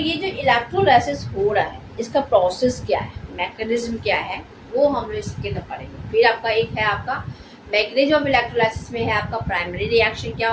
जो इलेक्ट्रोलाइसिस हो रहा है इसका प्रोसेस क्या है, मैकेनिज्म क्या है, वो हम लोग इसके अंदर पढ़ेंगे। फिर आपका एक है आपका मैकेनिज्म ऑफ इलेक्ट्रोलाइसिस में है आपका प्राइमरी रिएक्शन क्या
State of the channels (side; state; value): both; identical; correlation 1.00